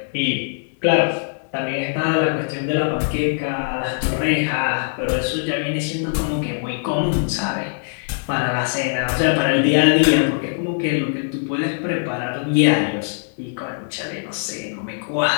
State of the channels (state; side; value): silent; right; digital silence